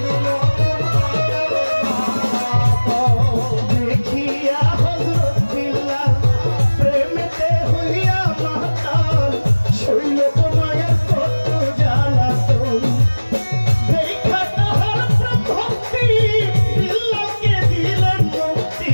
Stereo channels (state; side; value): inverted; both; correlation -1.00